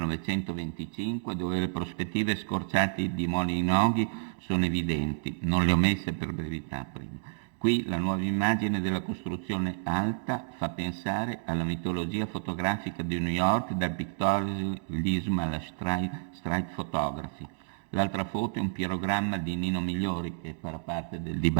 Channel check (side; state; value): left; silent; digital silence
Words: dove le prospettive scorciate di Molinoghi sono evidenti, non le ho messe per brevità prima. Qui la nuova immagine della costruzione alta fa pensare alla mitologia fotografica di New York, dal pictorialismo alla street photography. L'altra foto è un pirogramma di Nino Migliori, che farà parte del